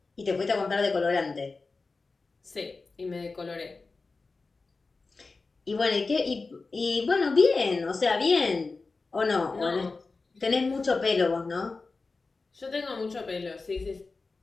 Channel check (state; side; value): quieter; right; 3.9 dB